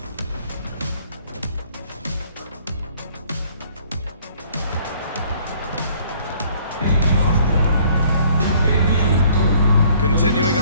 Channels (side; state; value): both; inverted; correlation -0.59